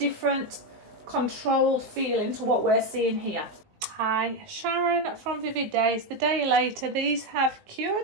controlled feeling to what we're seeing here. Hi, Sharon from Vivid Days. The day later, these have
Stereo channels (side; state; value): left; late; 19 ms